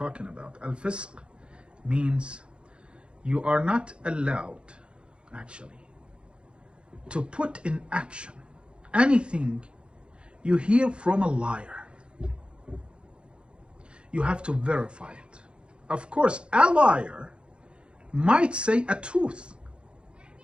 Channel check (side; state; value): left; late; 0.057 ms